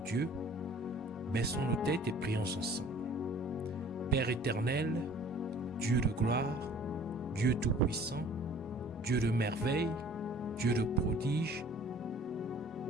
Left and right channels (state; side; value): normal; both; correlation 0.50